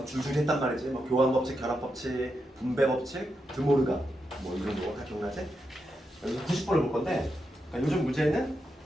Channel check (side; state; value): both; normal; correlation 0.85